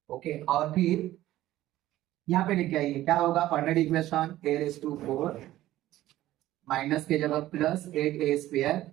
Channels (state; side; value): quieter; left; 14.8 dB